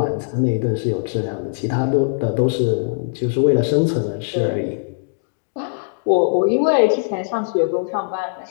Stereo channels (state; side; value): silent; right; digital silence